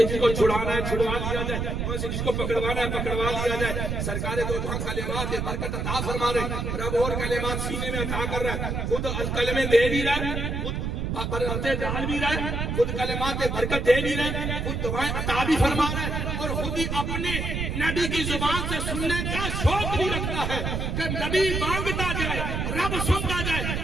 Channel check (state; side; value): noise; right; rumble, 2 dB below the sound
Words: جس کو چھڑانا ہے چھڑوا لیا جائے، وہیں سے جس کو پکڑوانا ہے پکڑوا لیا جائے. سرکار دو جہاں کلمات برکت عطا فرما رہے، رب اور کلمات سینے میں عطا کر رہا ہے، خود الکلمے دے بھی رہا ہے، خود برکتیں ڈال بھی رہے، خود کلمات برکت دے بھی رہے، خود دعائیں عطا بھی فرما رہے، اور خود ہی اپنے نبی کی زبان سے سننے کا شوق بھی رکھتا ہے کہ نبی مانگتا جائے، رب سنتا جائے،